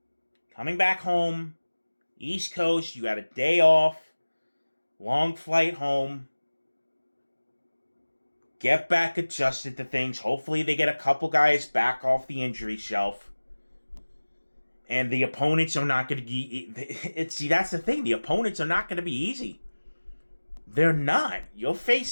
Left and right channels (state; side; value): inverted; both; correlation -1.00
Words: coming back home, East Coast, you got a day off, long flight home. Get back adjusted to things. Hopefully, they get a couple guys back off the injury shelf. And the opponents are not going to be... See, that's the thing. The opponents are not going to be easy. They're not. You're